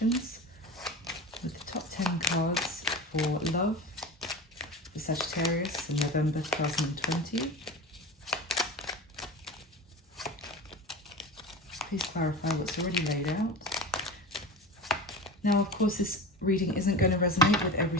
with the top 10 cards for love for Sagittarius in November 2020. Please clarify what's already laid out. Now, of course, this reading isn't going to resonate with every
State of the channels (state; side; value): normal; both; correlation 0.30